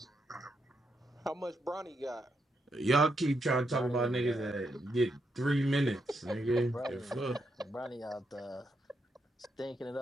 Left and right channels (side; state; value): both; normal; correlation 0.81